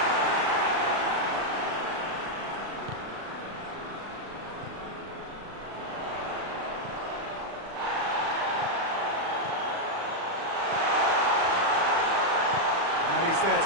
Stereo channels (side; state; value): left; late; 36 ms